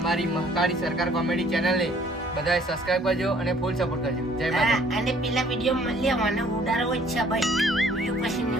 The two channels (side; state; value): both; normal; correlation 0.59